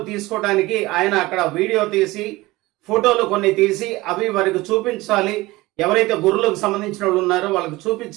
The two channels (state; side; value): quieter; left; 20.0 dB